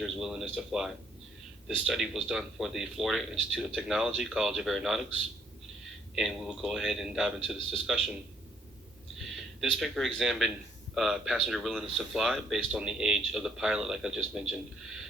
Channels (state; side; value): normal; both; correlation 0.67